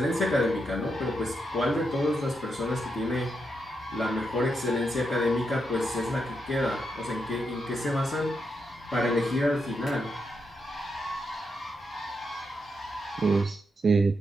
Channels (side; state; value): both; normal; correlation 0.83